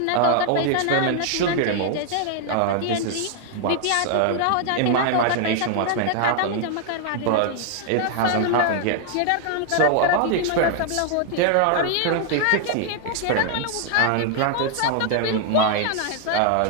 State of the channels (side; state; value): both; different; correlation 0.00